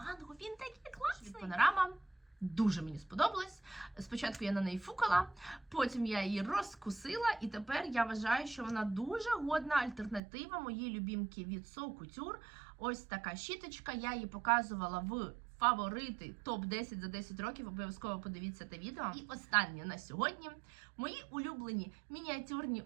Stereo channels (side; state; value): left; drops out; at 10.2 s